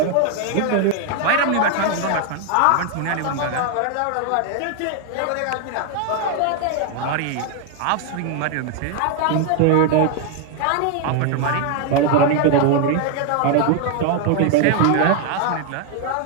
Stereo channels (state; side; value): different; both; correlation 0.00